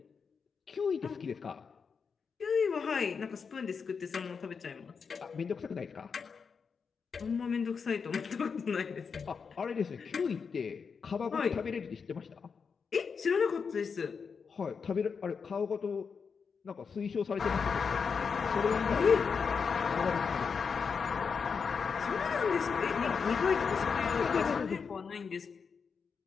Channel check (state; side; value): quieter; right; 5.8 dB